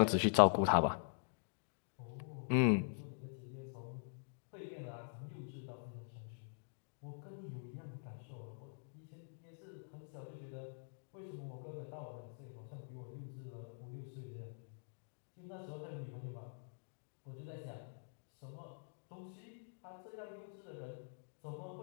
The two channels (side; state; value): right; silent; digital silence